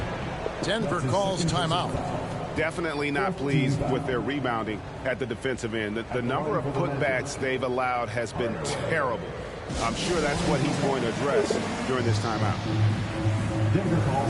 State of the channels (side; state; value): both; identical; correlation 1.00